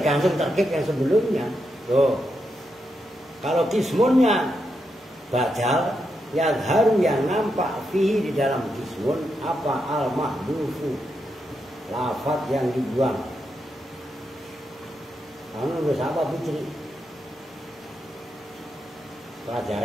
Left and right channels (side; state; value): both; normal; correlation 0.84